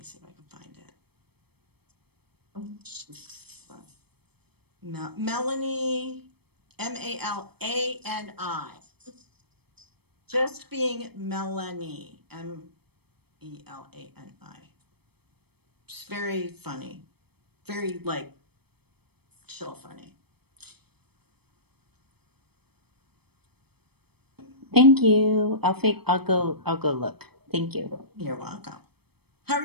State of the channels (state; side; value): late; left; 0.97 ms